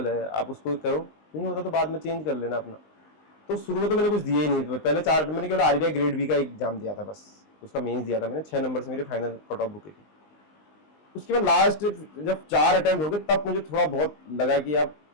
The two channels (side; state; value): right; late; 19 ms